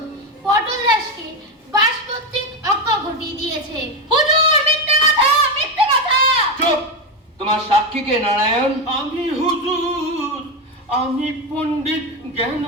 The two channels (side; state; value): both; normal; correlation 0.12